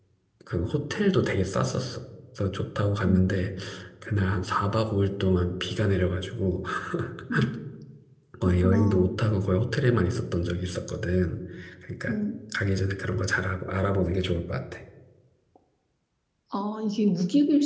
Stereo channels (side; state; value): both; identical; correlation 1.00